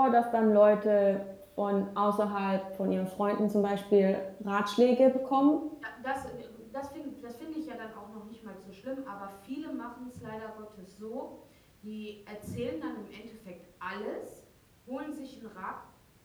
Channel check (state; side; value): identical; both; correlation 1.00